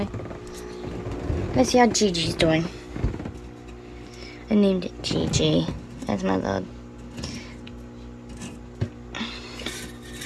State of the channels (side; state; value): both; identical; correlation 1.00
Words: Let's see how Gigi's doing. I named it Gigi. That's my little...